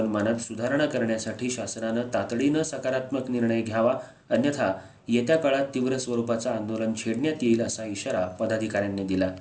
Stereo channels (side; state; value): both; identical; correlation 1.00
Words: सुधारणा करण्यासाठी शासनानं तातडीनं सकारात्मक निर्णय घ्यावा, अन्यथा येत्या काळात तीव्र स्वरूपाचं आंदोलन छेडण्यात येईल असा इशारा पदाधिकाऱ्यांनी दिला।